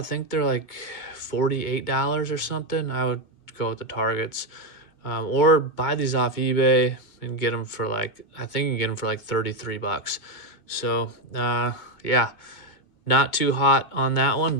think they're like $48 or something. I would go with the targets, or buy these off eBay and get them for like, I think you can get them for like 33 bucks. So yeah, not too hot on that one,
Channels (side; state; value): right; late; 2.2 ms